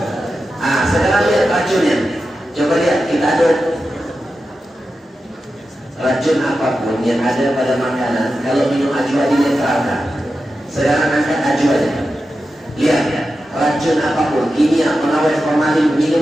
Sekarang lihat racunnya. Coba lihat, kita aduk. Racun apapun yang ada pada makanan, kalau minum ajwa dinetralkan. Sekarang angkat ajwanya. Lihat, racun apapun, kimia, pengawet, formalin, minum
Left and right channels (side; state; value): both; normal; correlation 0.91